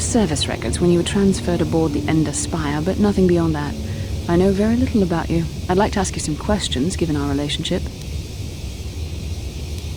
records when you were transferred aboard the Ender Spire, but nothing beyond that. I know very little about you. I'd like to ask you some questions, given our relationship.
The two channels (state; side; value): identical; both; correlation 1.00